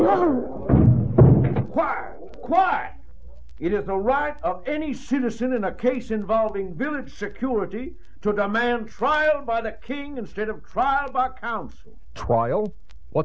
Quiet, quiet. It is the right of any citizen in a case involving village security to demand trial by the king instead of trial by council. Trial?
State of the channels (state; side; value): identical; both; correlation 1.00